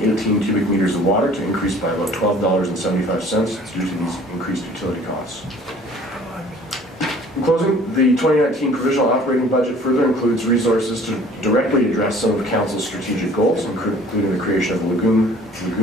cubic meters of water to increase by about $12.75 due to these increased utility costs. In closing, the 2019 provisional operating budget further includes resources to directly address some of council's strategic goals, including the creation of lagoon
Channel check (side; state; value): both; normal; correlation 0.52